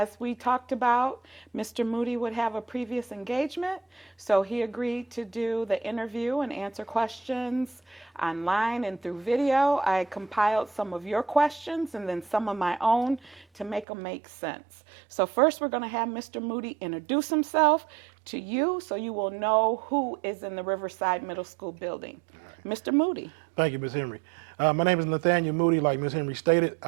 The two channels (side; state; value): left; drops out; at 13.9 s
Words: we talked about, Mr. Moody would have a previous engagement, so he agreed to do the interview and answer questions online and through video. I compiled some of your questions and then some of my own to make them make sense. So, first, we're going to have Mr. Moody introduce himself to you so you will know who is in the Riverside Middle School building. Mr. Moody. Thank you, Ms. Henry. My name is Nathaniel Moody, like Ms. Henry stated.